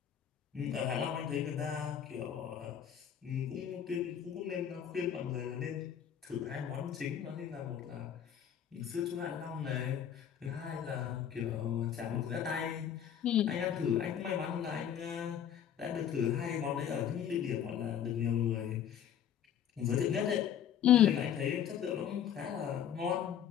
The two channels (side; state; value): right; quieter; 9.3 dB